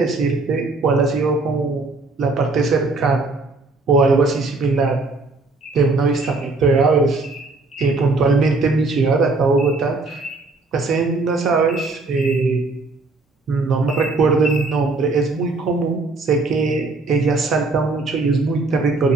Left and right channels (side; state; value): left; quieter; 3.5 dB